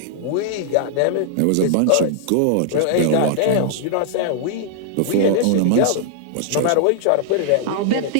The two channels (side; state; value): both; different; correlation -0.01